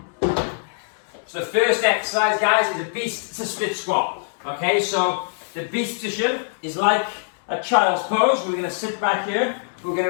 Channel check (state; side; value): silent; right; digital silence